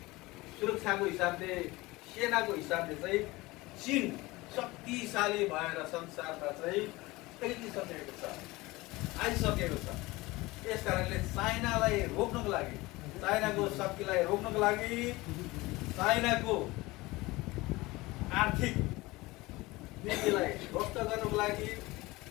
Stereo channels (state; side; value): quieter; right; 21.1 dB